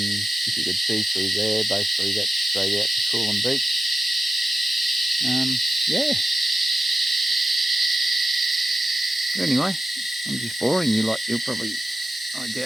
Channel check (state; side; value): normal; both; correlation 0.92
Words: you could see through there, basically that's straight out to Coolum Beach. Yeah. But anyway, I'm just boring you like you'll probably, I